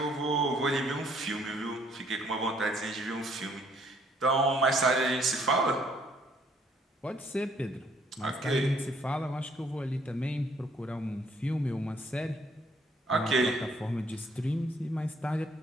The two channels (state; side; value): normal; both; correlation 0.65